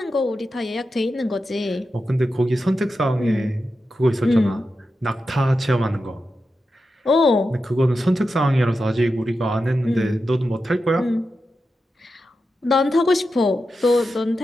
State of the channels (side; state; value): both; normal; correlation 0.90